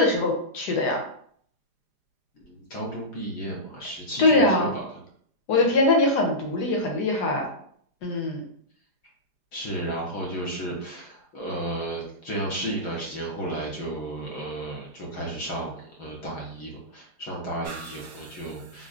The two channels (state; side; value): late; right; 4.9 ms